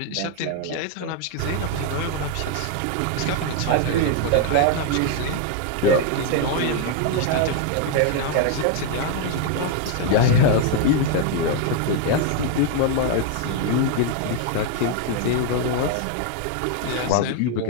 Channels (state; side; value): different; both; correlation 0.00